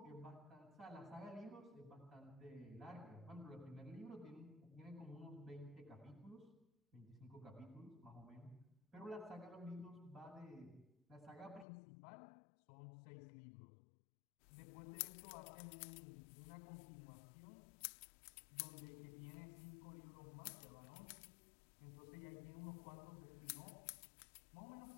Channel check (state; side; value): drops out; right; at 11.7 s